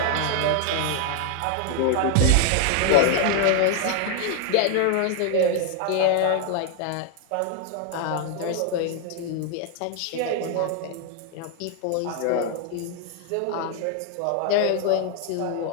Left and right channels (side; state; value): both; different; correlation 0.00